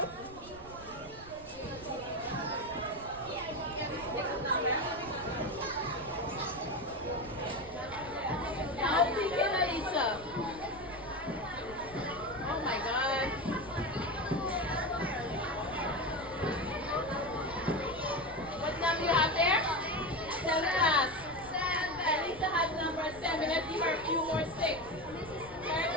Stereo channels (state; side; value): noise; right; rumble, 18 dB below the sound